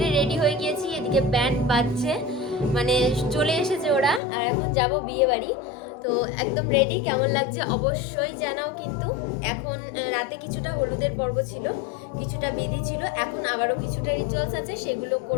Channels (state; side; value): drops out; right; at 4.2 s